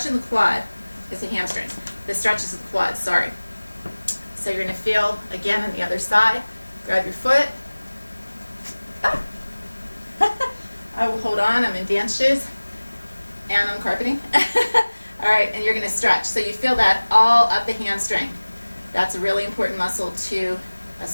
in the quad. It's the hamstrings. The stretches of the quads, sorry. So you're going to feel, again, on the other side. Grab your foot. Ah. I will hold on. I'm in dance shoes. And I'm carpeting. All right, and you're going to stretch. So you feel that all up the hamstring. That's a really important muscle to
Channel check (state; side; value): inverted; both; correlation -1.00